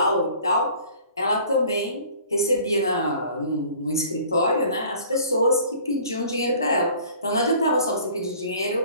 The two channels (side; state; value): both; inverted; correlation -0.50